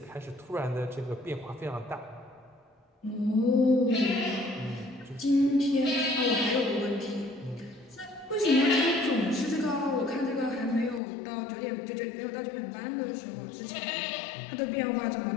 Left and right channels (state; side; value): drops out; right; at 11.0 s